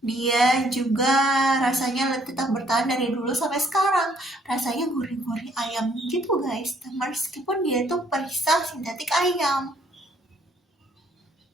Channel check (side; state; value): both; normal; correlation 0.65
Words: dia juga rasanya tetap bertahan dari dulu sampai sekarang. Rasanya gurih-gurih ayam gitu guys, meskipun dia itu perisa sintetik ayam.